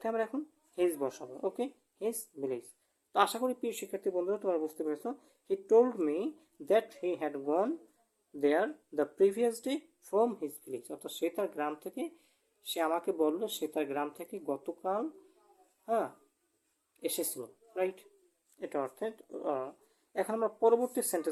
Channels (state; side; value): identical; both; correlation 1.00